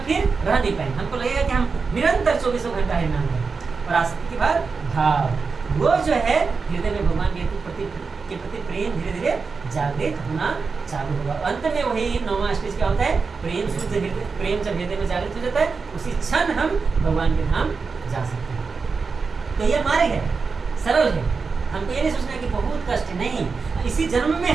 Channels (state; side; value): quieter; left; 4.8 dB